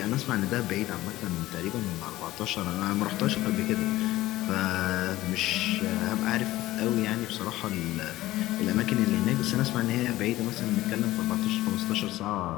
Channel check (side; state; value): right; quieter; 16.6 dB